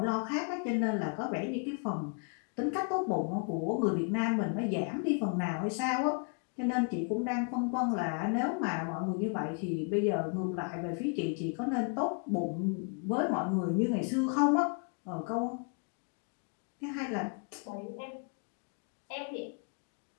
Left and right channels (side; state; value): right; quieter; 39.4 dB